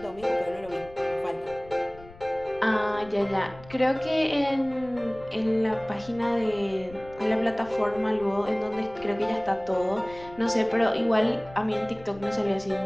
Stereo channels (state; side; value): noise; left; rumble, 20 dB below the sound